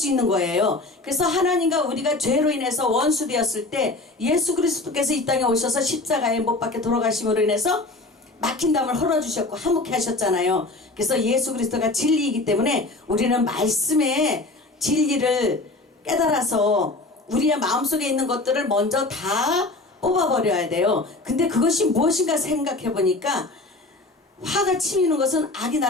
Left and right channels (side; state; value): right; quieter; 3.0 dB